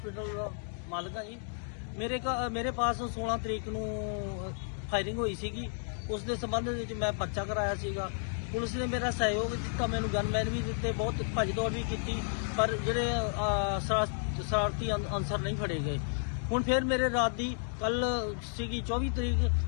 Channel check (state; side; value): silent; right; digital silence